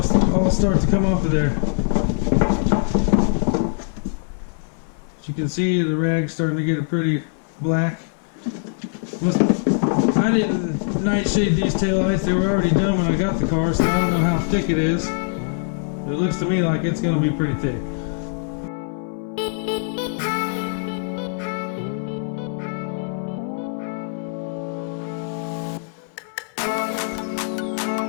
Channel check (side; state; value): right; silent; 58 dB below the other